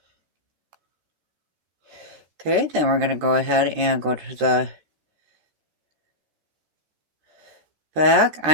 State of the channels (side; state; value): left; late; 13 ms